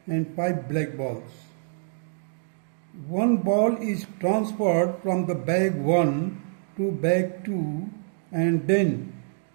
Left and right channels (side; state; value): left; silent; digital silence